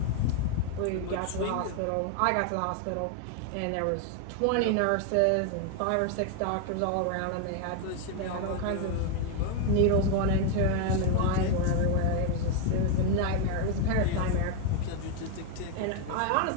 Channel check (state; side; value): different; both; correlation 0.00